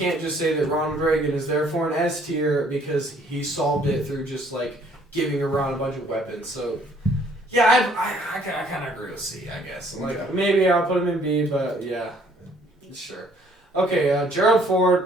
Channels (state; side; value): normal; both; correlation 0.61